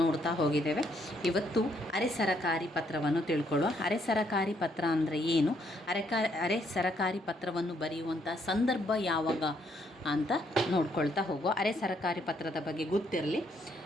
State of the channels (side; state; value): both; normal; correlation 0.72